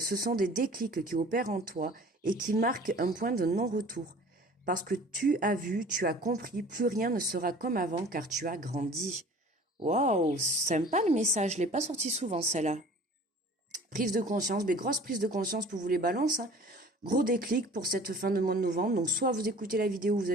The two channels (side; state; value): both; normal; correlation 0.46